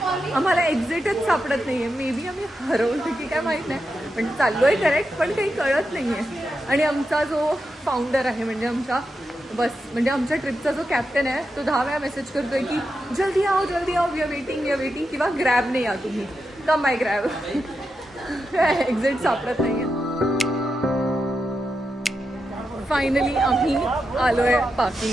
आम्हाला एक्झिटच सापडत नाहीये. मे बी आम्ही हरवलो की काय माहीत नाही, पण चाललोय करेक्ट, पण काही कळत नाहीये. आणि आमचा जो फाउंडर आहे म्हणजे आमच्या आमच्या ट्रिपचा जो कॅप्टन आहे तो 10 वेळा मेसेज करतोय की जल्दी आओ वी आर वेटिंग किंवा ग्रॅबने या तुम्ही, कम बाय ग्रॅब. एक्झिट सापडत नाहीये. फायनली आम्ही आलोय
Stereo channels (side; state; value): both; normal; correlation 0.87